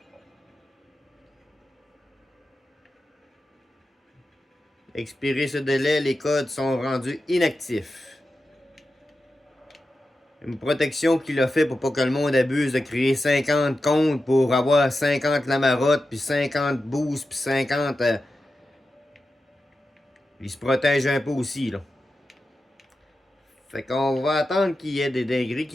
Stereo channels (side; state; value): both; normal; correlation 0.91